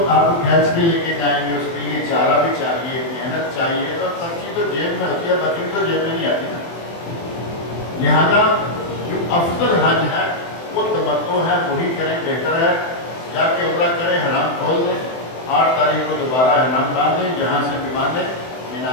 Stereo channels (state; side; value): late; right; 24 ms